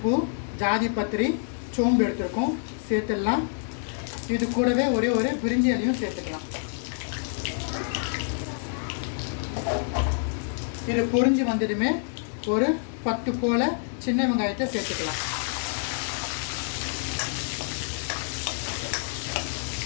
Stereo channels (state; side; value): silent; right; digital silence